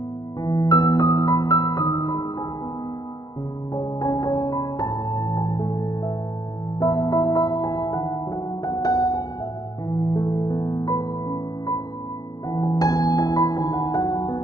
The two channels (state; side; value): late; right; 0.19 ms